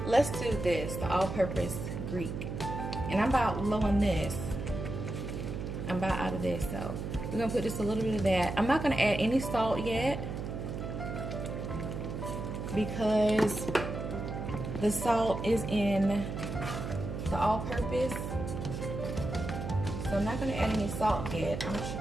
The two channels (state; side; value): noise; right; hum, 5 dB below the sound